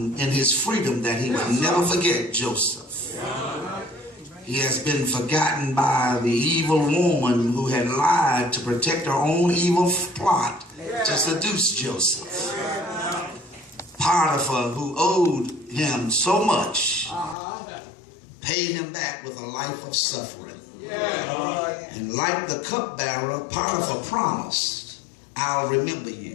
in his freedom that he would never forget Joseph. He has been forgotten by the evil woman who had lied to protect her own evil plot to seduce Joseph. Potiphar, who owed him so much, paid him back with a life of suffering. And like the cupbearer, Potiphar promised, I'll remember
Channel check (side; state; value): right; drops out; at 17.4 s